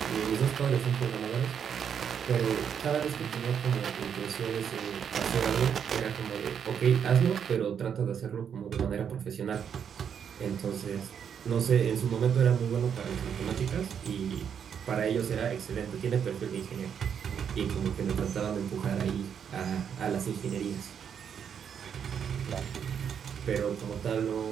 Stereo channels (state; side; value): quieter; left; 7.8 dB